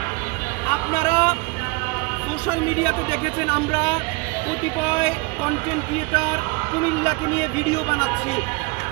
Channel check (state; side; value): quieter; left; 26.3 dB